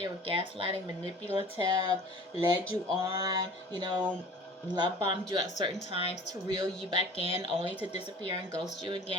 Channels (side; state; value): both; normal; correlation 0.44